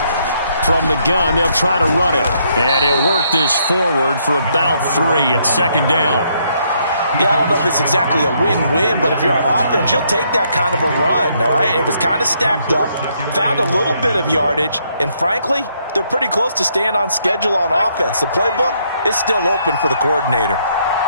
From the gun, they'll try to run it. And he'll work this forward for about 3 at second down. Yeah, I don't know if it's exactly a win-win, but if you're on offense, you'll take that kind of a run, all right? It was kind of stacked up, found a little bit of yardage, and frankly, they're pretty close to staying on schedule on offense. The playbook is still open for the coordinator.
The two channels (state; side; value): inverted; both; correlation -0.72